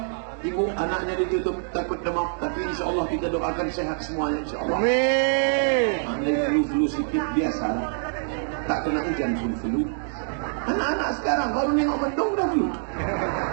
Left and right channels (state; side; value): silent; left; digital silence